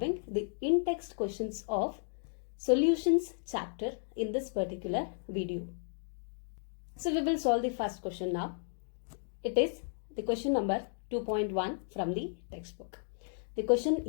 the in-text questions of solutions chapter in this particular video. So we will solve the first question now. It is the question number 2.1 from the textbook. The question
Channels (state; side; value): silent; right; digital silence